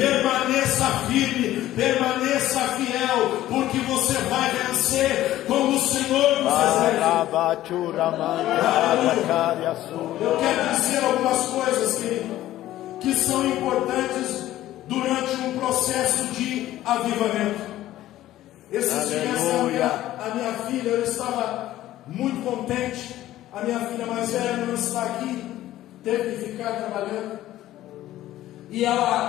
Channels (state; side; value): quieter; right; 14.3 dB